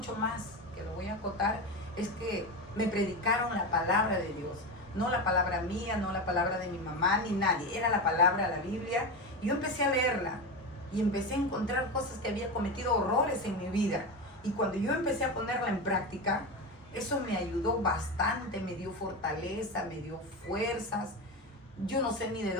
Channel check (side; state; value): both; normal; correlation 0.19